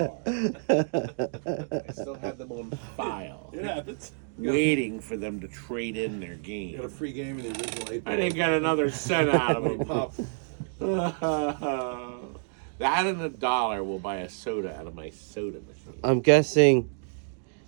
I still had them on file. It happens. Waiting for them to trade in their game. Got a free game in the original 8 I didn't get another cent out of them. Pop. That and $1 will buy a soda out of my soda machine. I'm guessing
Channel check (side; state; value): left; silent; digital silence